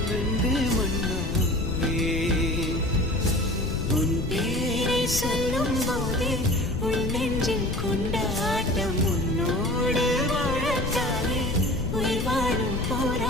வெந்தே மண்ணாவே. உன் பேரை சொல்லும் போதே உன் நெஞ்சில் கொண்டாட்டம். உன்னோடு வாழத்தானே உயிர் வாழும்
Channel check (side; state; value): left; noise; rumble, 3 dB below the sound